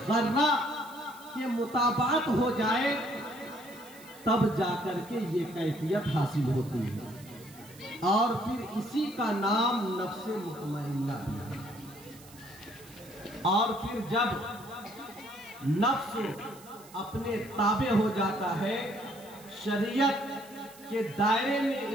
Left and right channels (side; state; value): right; noise; hiss, 21 dB below the sound